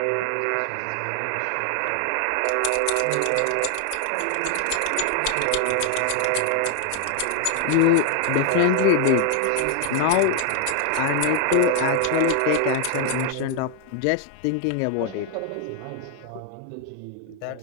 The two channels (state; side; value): different; both; correlation 0.01